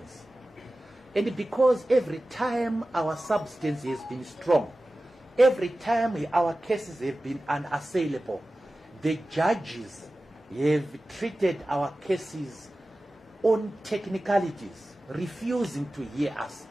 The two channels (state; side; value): normal; both; correlation 0.96